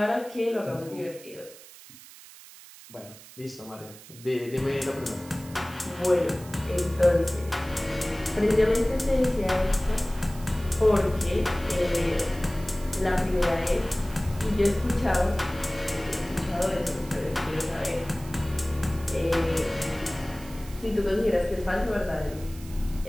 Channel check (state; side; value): noise; right; hiss, 19 dB below the sound